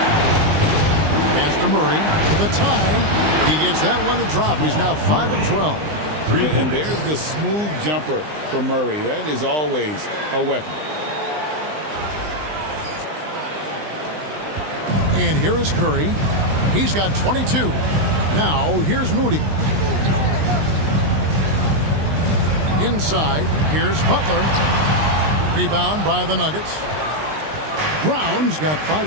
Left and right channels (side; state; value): left; late; 20 ms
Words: Pass to Murray for the tie. He gets that one to drop. He's now 5 of 12. And there's the smooth jumper for Murray. That is always a weapon. And here is Curry. He's got 22. Now here's Moody. Inside, here's Butler. Rebound by the Nuggets. Brown's got